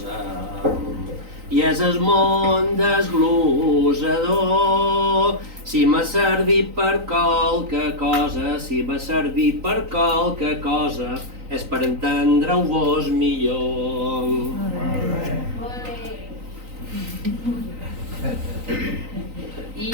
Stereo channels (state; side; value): late; left; 3.9 ms